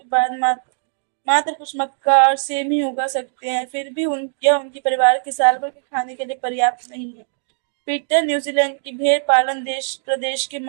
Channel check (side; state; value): left; silent; digital silence